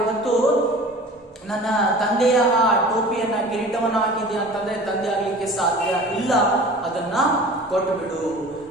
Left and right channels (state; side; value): normal; both; correlation 0.41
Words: ಇವತ್ತು ನನ್ನ ತಂದೆಯ ಆ ಟೋಪಿಯನ್ನ ಕಿರೀಟವನ್ನ ಹಾಕಿದ್ಯಾ ಅಂತಂದ್ರೆ ತಂದೆ ಆಗ್ಲಿಕ್ಕೆ ಸಾಧ್ಯ ಇಲ್ಲ, ಅದನ್ನ ಕೊಟ್ಟು ಬಿಡು.